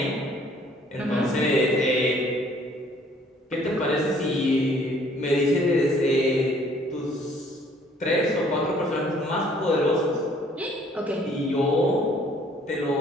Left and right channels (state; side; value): normal; both; correlation 0.60